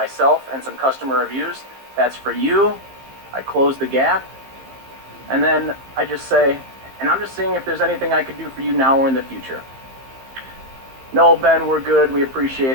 and some customer reviews. That's for you. I close the gap, and then I just say, and I'm just seeing if there's anything I could do for you now or in the future. No, Ben, we're good. We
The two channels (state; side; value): late; left; 15 ms